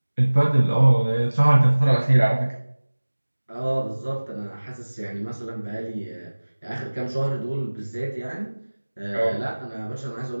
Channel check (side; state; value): both; inverted; correlation -1.00